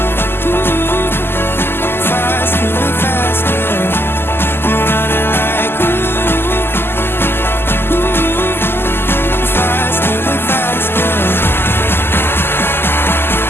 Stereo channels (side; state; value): right; late; 0.11 ms